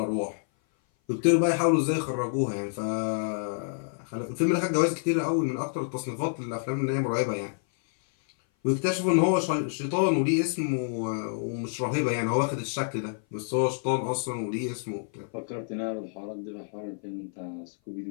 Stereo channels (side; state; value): right; silent; 56 dB below the other